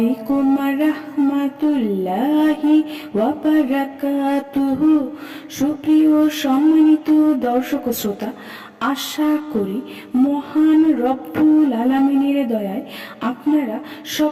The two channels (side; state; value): both; identical; correlation 1.00